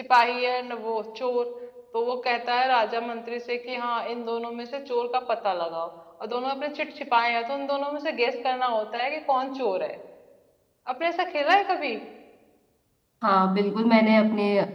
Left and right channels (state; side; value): identical; both; correlation 1.00